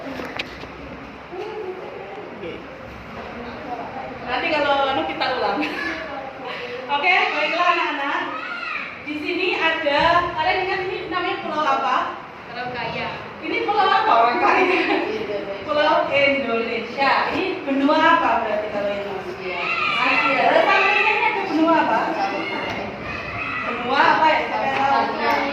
Nanti kalau kita ulang. Oke, baiklah anak-anak. Di sini ada, kalian ingat ini namanya pulau apa? Pulau Kaya. Ini pulau apa orang kaya? Pulau Indonesia. Ini benua apa berarti kalau Indonesia? Asia. Lalu sampingnya ini ada benua apa? Benua apa ya? Saya tahu.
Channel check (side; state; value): both; identical; correlation 1.00